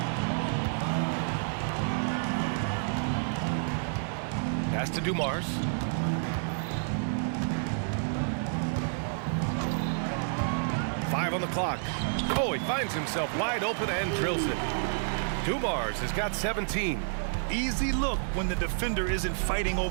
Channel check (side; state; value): left; silent; digital silence